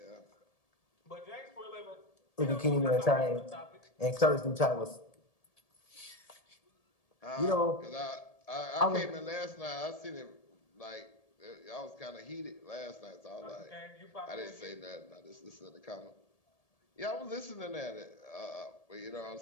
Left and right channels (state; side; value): late; right; 1.7 ms